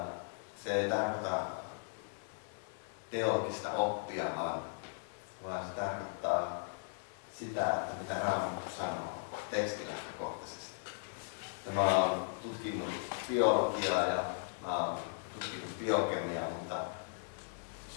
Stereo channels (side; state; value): right; silent; 53 dB below the other